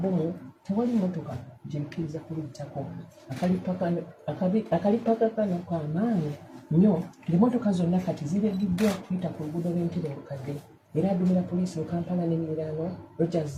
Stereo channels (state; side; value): identical; both; correlation 1.00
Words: tewali mmotoka gyekkiriza kuluyitako. Akalippagano k'amaanyi nnyo ng'emmotoka zonna kati ziregiddwa kuyita ku luguudo lw'Entebbe olukadde era adumira poliisi mu Kampala n'emiriraano Rogers